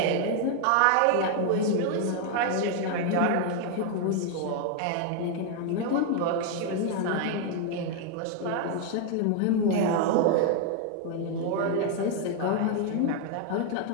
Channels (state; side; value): different; both; correlation 0.00